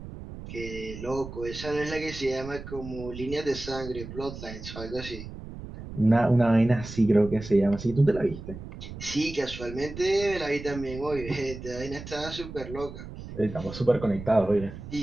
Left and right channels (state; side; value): noise; right; rumble, 11 dB below the sound